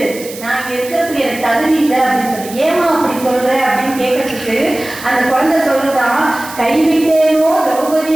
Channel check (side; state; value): right; noise; hiss, 14 dB below the sound